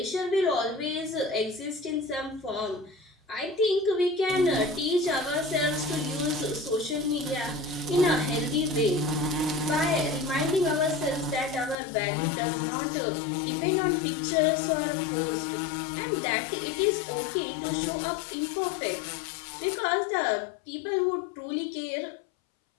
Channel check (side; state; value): right; drops out; at 11.8 s